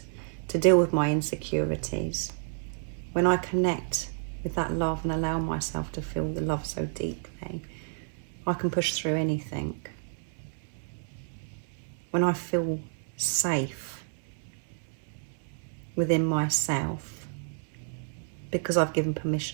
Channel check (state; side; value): silent; left; 58 dB below the other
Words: to deal with my insecurities. When I connect with that love and allow myself to feel the love so deeply, I can push through anything. When I feel safe within myself, because I've given